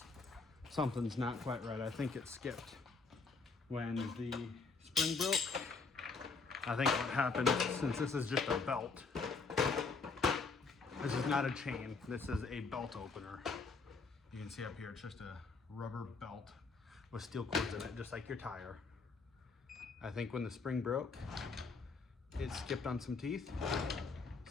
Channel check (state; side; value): quieter; right; 4.4 dB